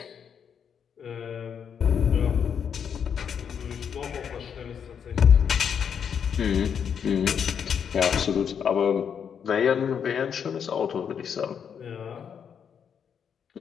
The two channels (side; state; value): right; quieter; 7.6 dB